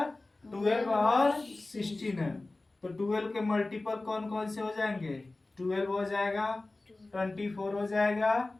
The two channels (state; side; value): quieter; right; 3.0 dB